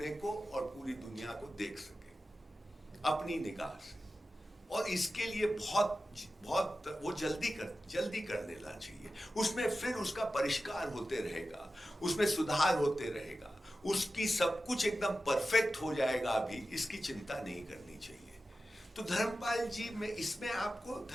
को और पूरी दुनिया को देख सके अपनी निगाह से। और इसके लिए बहुत वो जल्दी कर लेना चाहिए। उसमें फिर उसका परिष्कार होते रहेगा, उसमें सुधार होते रहेगा, उसकी सब कुछ एकदम परफेक्ट हो जाएगा, अभी इसकी चिंता नहीं करनी चाहिए। तो धर्मपाल जी में इसमें आपको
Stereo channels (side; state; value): both; normal; correlation 0.94